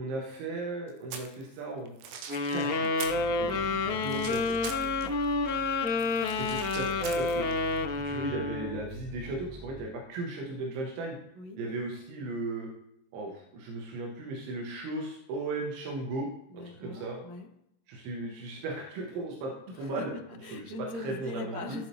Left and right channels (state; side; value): late; left; 22 ms